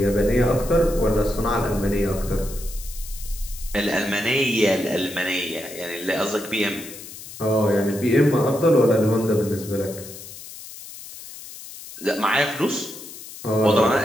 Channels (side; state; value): left; noise; hiss, 14 dB below the sound